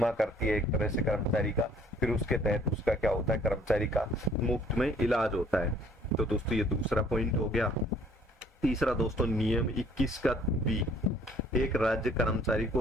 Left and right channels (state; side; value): normal; both; correlation 0.58